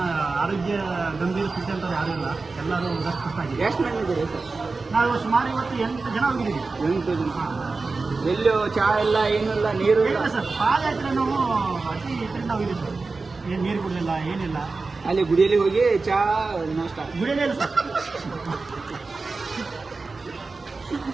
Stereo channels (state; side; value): quieter; left; 3.9 dB